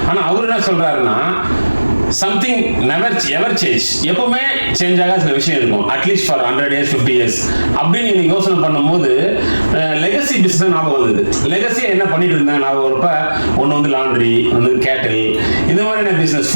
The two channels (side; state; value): both; inverted; correlation -1.00